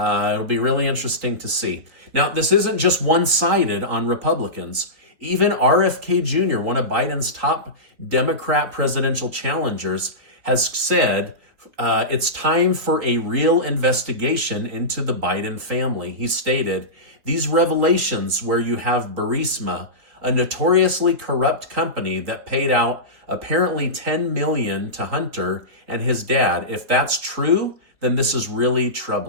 be really interesting to see. Now, this isn't just one-sided on Republicans. Even RFK Jr., one of Biden's top Democrat presidential challengers, has said it's time for a real investigation into the Biden family. He stated, "These revelations where you have Burisma, a notoriously corrupt company that paid out apparently $10 million to Hunter and his dad. If that's true, then this is really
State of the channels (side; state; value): left; late; 3.9 ms